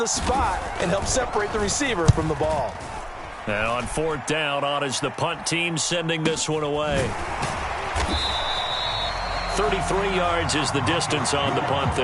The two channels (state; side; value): identical; both; correlation 1.00